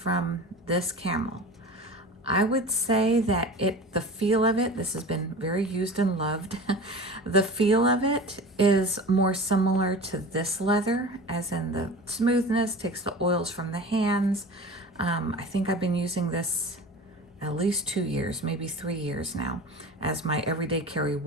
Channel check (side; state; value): both; normal; correlation 0.35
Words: this Camel. I would say that the feel of it, this has been very used and loved. The feel of it is more similar to this leather, as in the smoothness, takes the oils from the hands. I think I've been using this at least 2 years, maybe 3 years now, as my everyday carry